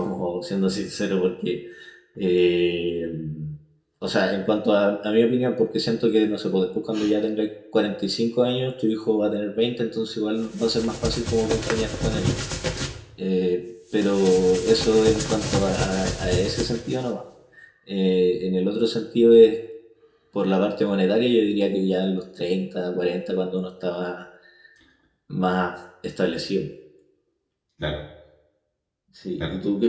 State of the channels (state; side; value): identical; both; correlation 1.00